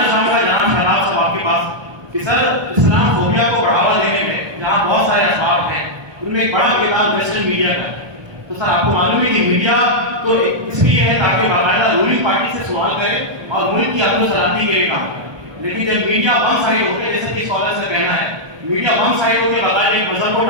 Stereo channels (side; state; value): left; late; 1.2 ms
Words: چاہوں گا جناب شہاب صاحب آپ کے پاس کہ سر اسلام فوبیا کو بڑھاوا دینے میں جہاں بہت سارے اسباب ہیں ان میں ایک بڑا کردار ویسٹرن میڈیا کا ہے، تو سر آپ کو معلوم ہے کہ میڈیا تو اس لیے ہے تاکہ باقاعدہ رولنگ پارٹی سے سوال کرے اور ملک کی امن و سلامتی کے لیے کام کرے، لیکن جب میڈیا ون سائڈ ہو کے جیسے کہ اسکالر سے کہنا ہے میڈیا ون سائڈ ہو کے باقاعدہ ایک مذہب کو